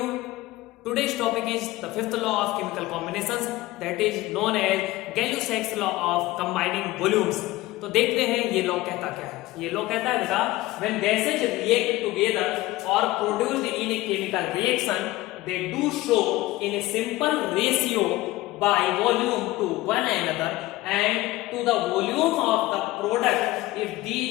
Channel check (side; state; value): right; quieter; 18.2 dB